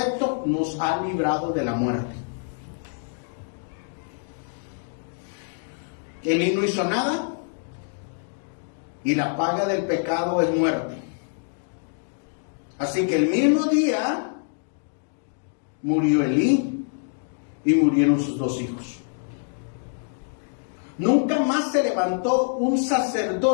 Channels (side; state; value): right; silent; digital silence